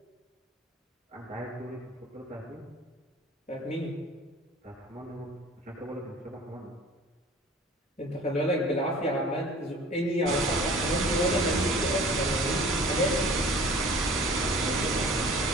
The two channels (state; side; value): normal; both; correlation 0.46